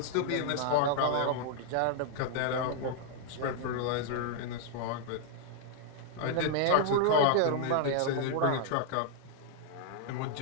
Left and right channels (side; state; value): both; different; correlation -0.01